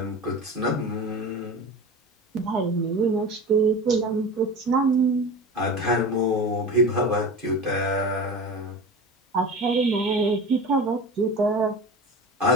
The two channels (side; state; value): both; normal; correlation 0.31